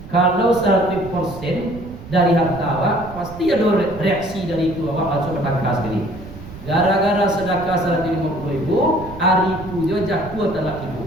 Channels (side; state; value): right; noise; rumble, 15 dB below the sound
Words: Kalau 100% dari harta awak, pasti ada reaksi dari itu awak langsung bertangkah sekali. Gara-gara sedekah 150.000, hari itu dia jatuh talak